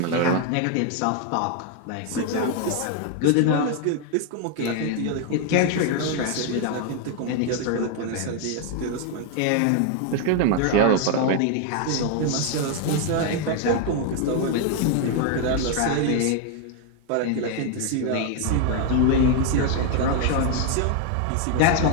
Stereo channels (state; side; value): different; both; correlation 0.01